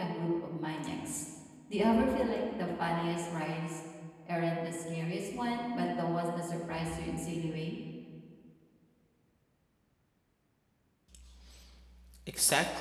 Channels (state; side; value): identical; both; correlation 1.00